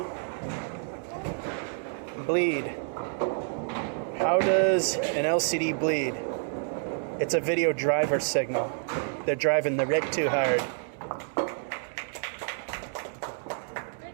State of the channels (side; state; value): left; silent; 59 dB below the other